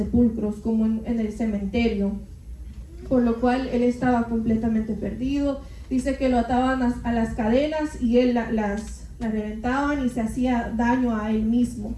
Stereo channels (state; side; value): identical; both; correlation 1.00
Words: como en el cementerio, por lo cual él estaba completamente perdido. Dice que lo ataban a las cadenas y él las reventaban y se hacía daño a él mismo.